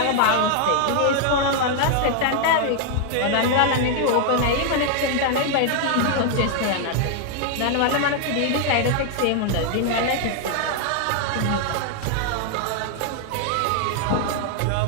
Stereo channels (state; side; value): different; both; correlation 0.00